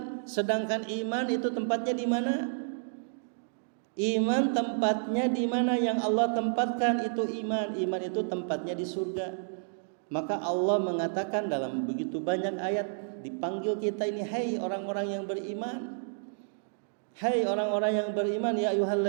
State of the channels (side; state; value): left; silent; digital silence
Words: Sedangkan iman itu tempatnya di mana? Iman tempatnya di mana yang Allah tempatkan itu iman. Iman itu tempatnya di surga. Maka Allah mengatakan dalam begitu banyak ayat, dipanggil kita ini, hai orang-orang yang beriman. Hai orang-orang yang beriman, ya